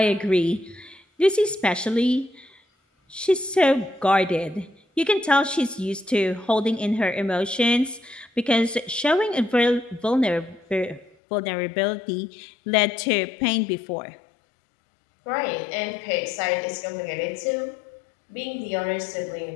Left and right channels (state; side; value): drops out; right; at 11.2 s